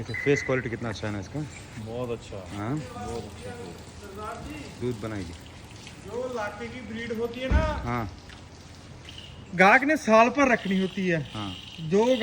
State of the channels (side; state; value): both; identical; correlation 1.00